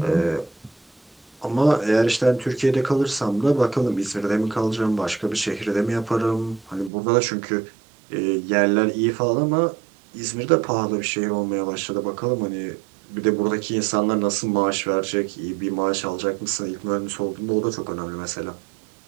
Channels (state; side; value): drops out; left; at 6.9 s